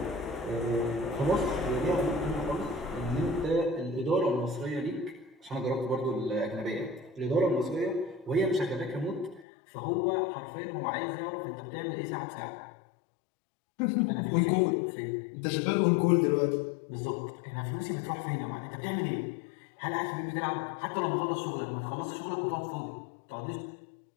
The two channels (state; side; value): drops out; right; at 9.5 s